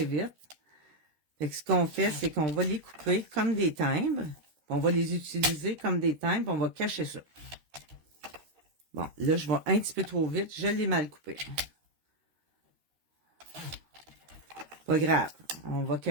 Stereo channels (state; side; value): late; left; 13 ms